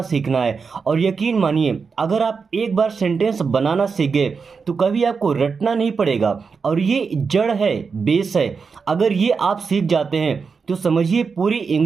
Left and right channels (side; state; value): left; quieter; 5.3 dB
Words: सीखना है। और यकीन मानिए, अगर आप एक बार सेंटेंस बनाना सीख गए तो कभी आपको रटना नहीं पड़ेगा। और ये जड़ है, बेस है। अगर ये आप सीख जाते हैं तो समझिए पूरी